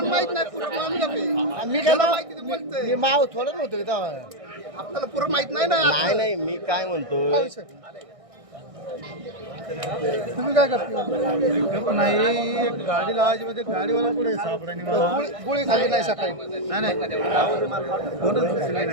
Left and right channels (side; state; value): left; late; 1.6 ms